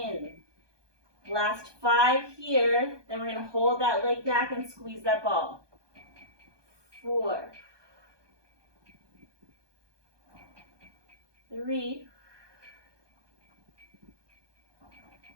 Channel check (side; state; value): left; late; 1.2 ms